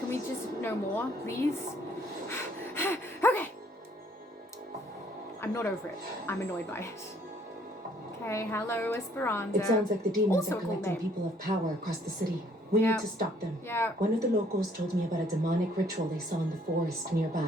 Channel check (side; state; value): both; normal; correlation 0.63